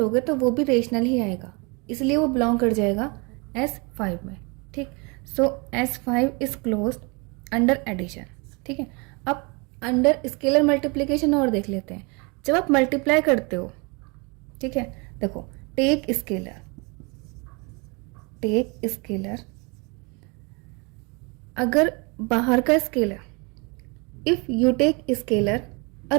तो वो भी रेशनल ही आएगा, इसलिए वो बिलोंग कर जाएगा S5 में. ठीक, so S5 is closed under addition. ठीक है, अब अंडर स्केलर मल्टीप्लिकेशन और देख लेते हैं. जब आप मल्टीप्लाई करते हो, ठीक है, देखो टेक स्केलर, अगर बाहर का scalar, if you take scalar a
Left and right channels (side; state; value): left; quieter; 30.1 dB